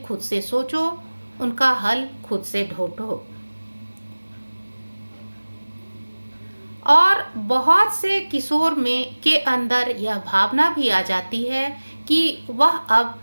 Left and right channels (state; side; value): inverted; both; correlation -1.00